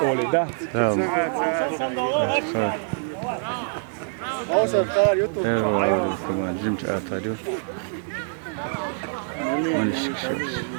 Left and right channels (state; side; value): silent; left; digital silence